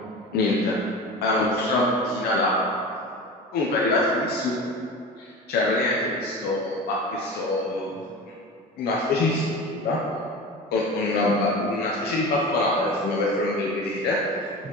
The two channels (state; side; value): normal; both; correlation 0.31